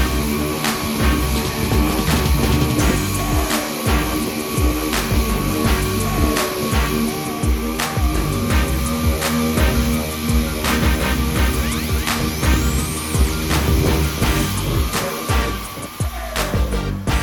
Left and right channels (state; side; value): identical; both; correlation 1.00